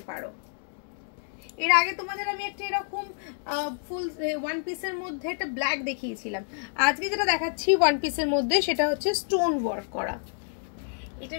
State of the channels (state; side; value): silent; right; digital silence